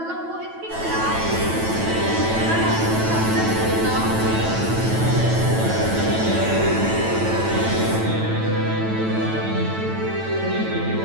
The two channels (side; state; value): left; late; 9.1 ms